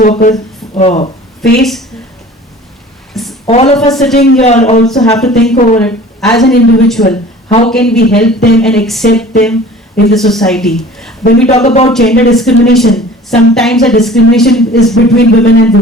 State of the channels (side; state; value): both; normal; correlation 0.45